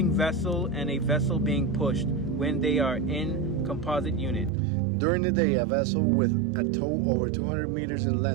vessel and a vessel being pushed when they are in composite unit. During the day, a vessel with a tow over 200 meters in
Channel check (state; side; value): drops out; left; at 4.5 s